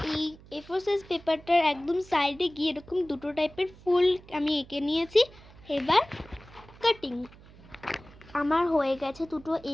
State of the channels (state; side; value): noise; right; hum, 22 dB below the sound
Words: এই A4 সাইজ পেপারটার একদম সাইডে গিয়ে এরকম দুটো টাইপের ফুল আমি এঁকে নিয়েছি। এবার কাটিং আমার হয়ে গেছে, দুটো